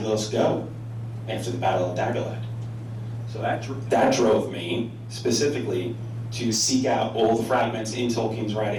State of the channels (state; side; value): identical; both; correlation 1.00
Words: go after the Battle of Dagorlad? So that drove me specifically to seek out all the fragments in Tolkien's